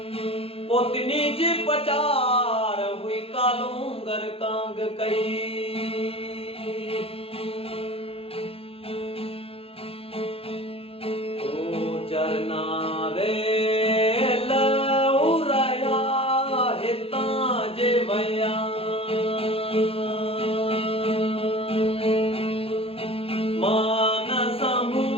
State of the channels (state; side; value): late; right; 0.27 ms